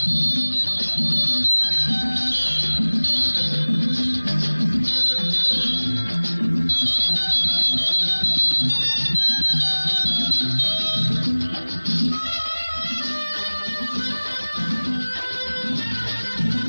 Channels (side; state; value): both; inverted; correlation -1.00